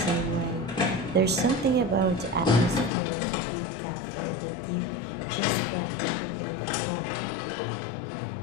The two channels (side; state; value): right; drops out; at 2.9 s